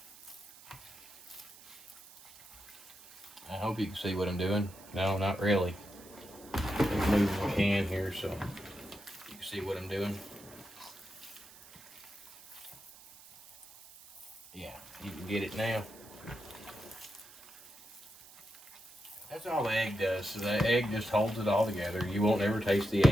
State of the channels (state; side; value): noise; right; hiss, 20 dB below the sound